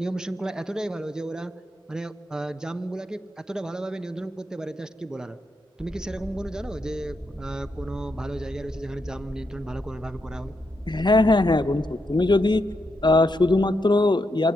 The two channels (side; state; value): both; normal; correlation 0.82